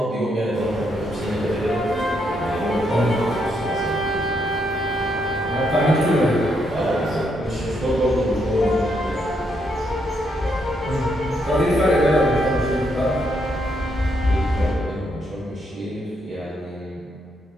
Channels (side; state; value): both; normal; correlation 0.77